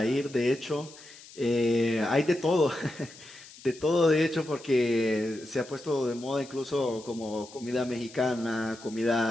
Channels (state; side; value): noise; left; hiss, 19 dB below the sound